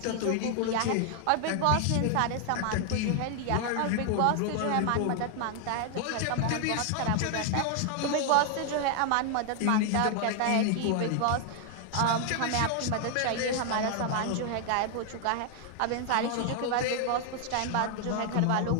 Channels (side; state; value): both; different; correlation 0.00